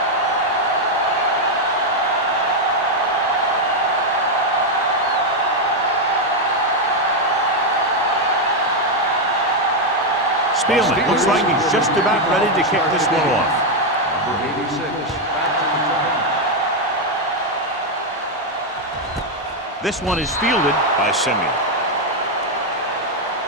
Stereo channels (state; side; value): normal; both; correlation 0.02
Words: Spielman looks like he's just about ready to kick this one off. Number 86. This one is fielded by Simeon.